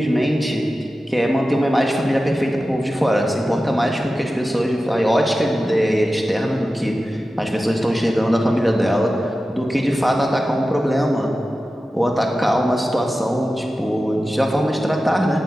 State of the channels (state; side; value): normal; both; correlation 0.94